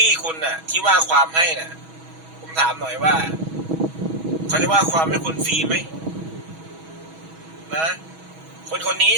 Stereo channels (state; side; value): late; left; 6.2 ms